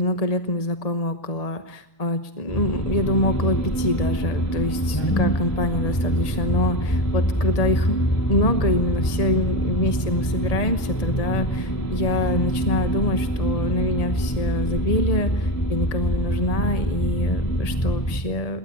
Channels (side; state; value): right; late; 1.7 ms